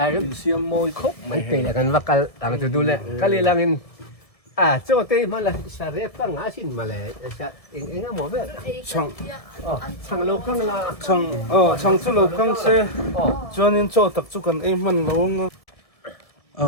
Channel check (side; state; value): right; late; 1.7 ms